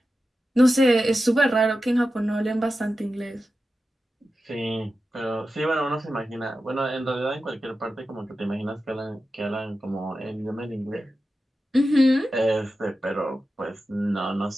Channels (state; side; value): normal; both; correlation 0.92